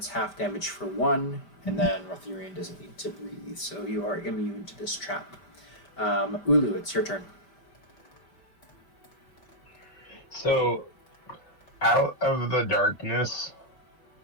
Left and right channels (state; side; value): late; right; 5.1 ms